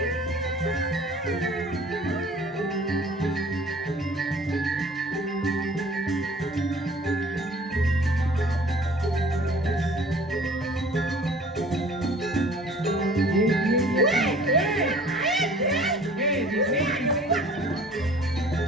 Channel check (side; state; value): both; normal; correlation 0.49